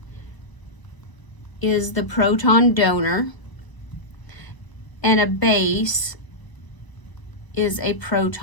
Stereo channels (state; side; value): late; right; 1.0 ms